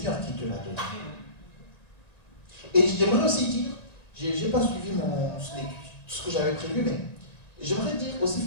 qui te l'a donnée. Et j'aimerais aussi dire, je n'ai pas suivi ce que j'avais prévu, mais j'aimerais dire aussi, il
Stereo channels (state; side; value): late; right; 1.9 ms